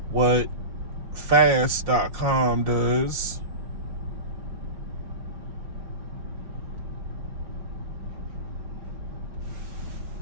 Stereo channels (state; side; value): late; left; 5.2 ms